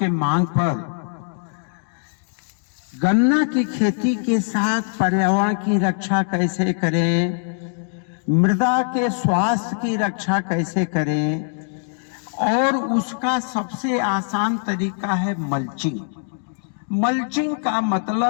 मांग पर गन्ना की खेती के साथ पर्यावरण की रक्षा कैसे करें, मृदा के स्वास्थ्य की रक्षा कैसे करें, और उसका सबसे आसान तरीका है मल्चिंग। मल्चिंग का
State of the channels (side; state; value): right; silent; 61 dB below the other